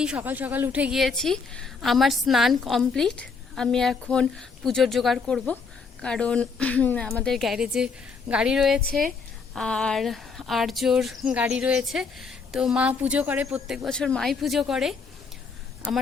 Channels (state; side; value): quieter; right; 4.9 dB